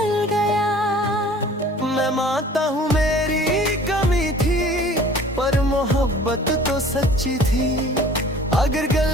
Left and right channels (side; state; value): both; normal; correlation 0.48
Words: गया। मैं मानता हूँ मेरी कमी थी, पर मोहब्बत तो सच्ची थी। अगर